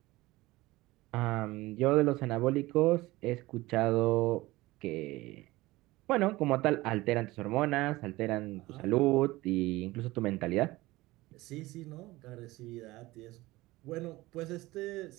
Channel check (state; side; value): quieter; left; 19.4 dB